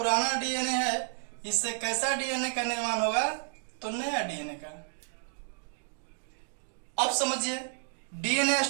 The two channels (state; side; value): silent; left; 57 dB below the other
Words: डीएनए है, इससे कैसा डीएनए का निर्माण होगा? तो नया डीएनए का। अब समझिए, डीएनए